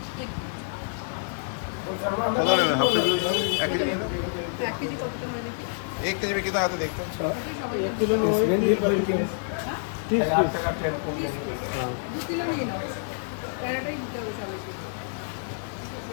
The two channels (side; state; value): right; silent; digital silence